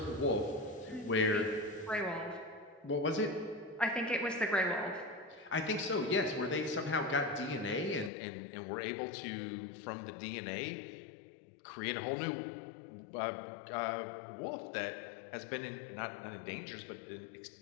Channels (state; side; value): drops out; right; at 8.1 s